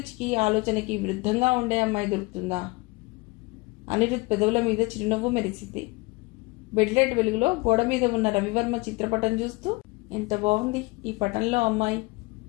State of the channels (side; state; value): right; quieter; 24.9 dB